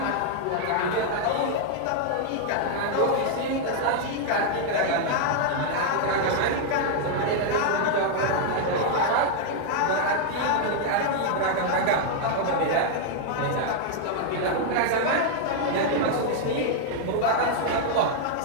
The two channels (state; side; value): different; both; correlation 0.00